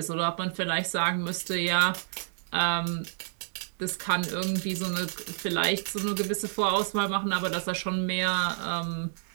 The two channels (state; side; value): silent; left; digital silence